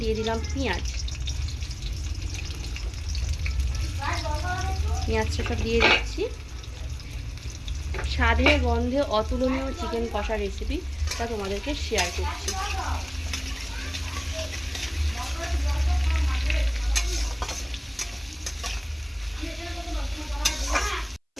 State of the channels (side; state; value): both; identical; correlation 1.00